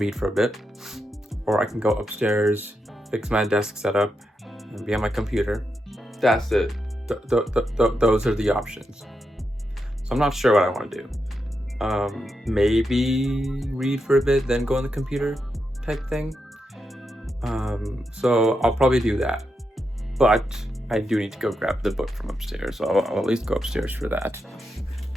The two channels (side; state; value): both; normal; correlation 0.85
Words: for a bit, or I can go upstairs, fix my desk setup, and be on my computer. That's it. Those are the options. So I'm not sure what I want to do. Maybe read for a bit, then go on the computer type thing. So I'll probably do that. But I do need to go grab the book from upstairs, so I'll at least go upstairs for that.